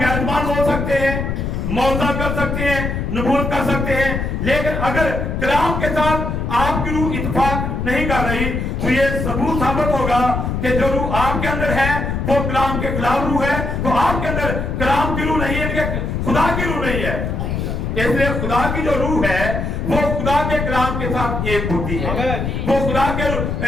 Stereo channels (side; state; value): left; noise; rumble, 2 dB below the sound